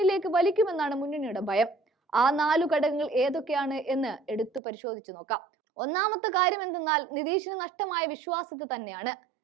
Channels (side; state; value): left; drops out; at 4.6 s